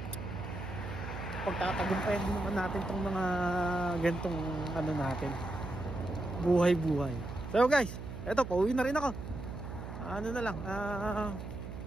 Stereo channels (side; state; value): right; noise; hum, 9 dB below the sound